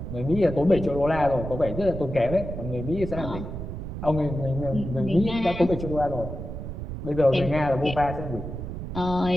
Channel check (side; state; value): right; noise; rumble, 7 dB below the sound